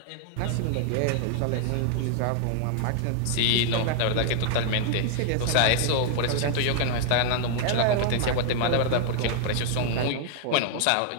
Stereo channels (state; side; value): different; both; correlation 0.00